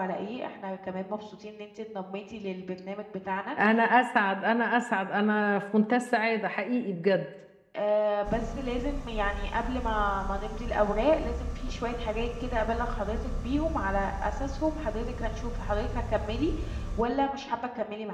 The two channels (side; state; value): both; identical; correlation 1.00